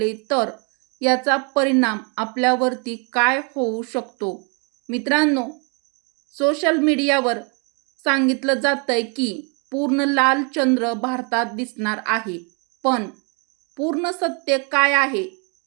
तर याचा परिणाम आपल्यावरती काय होऊ शकतो? मित्रांनो, सोशल मीडियावर सांगितलं जातंय की पूर्ण लाल चंद्र भारतात दिसणार आहे, पण पूर्ण सत्य काय आहे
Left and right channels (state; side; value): quieter; left; 35.6 dB